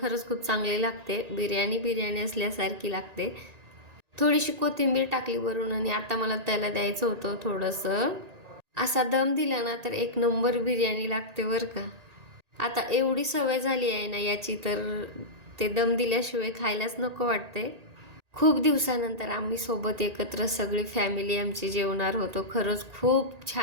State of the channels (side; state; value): left; late; 1.9 ms